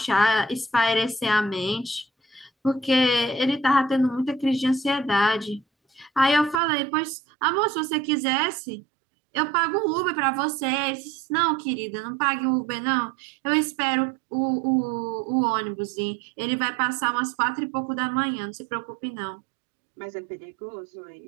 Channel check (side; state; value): left; drops out; at 6.6 s